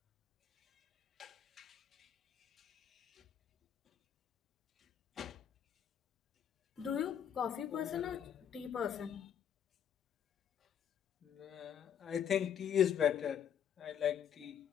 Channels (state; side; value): quieter; right; 8.9 dB